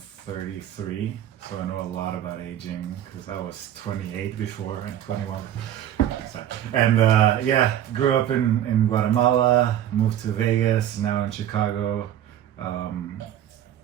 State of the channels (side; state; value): left; quieter; 11.2 dB